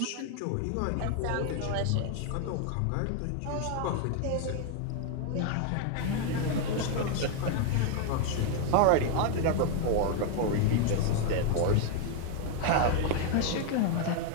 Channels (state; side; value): different; both; correlation 0.00